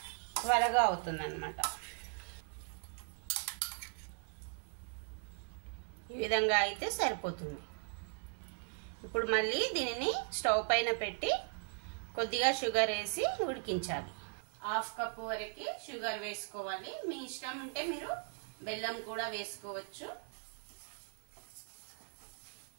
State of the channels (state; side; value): silent; left; 52 dB below the other